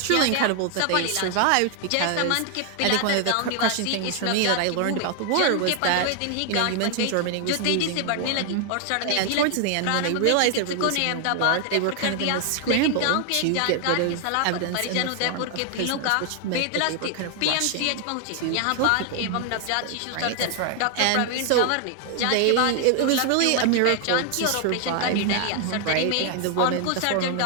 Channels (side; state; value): both; different; correlation 0.00